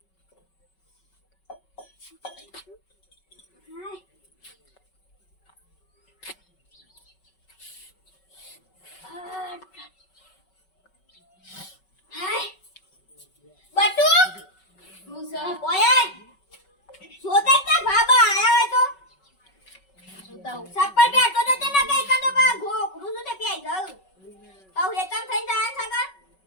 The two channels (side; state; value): right; late; 5.3 ms